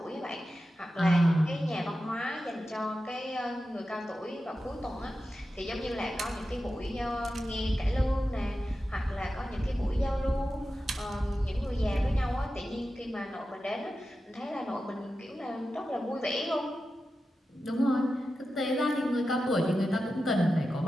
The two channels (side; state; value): both; normal; correlation 0.92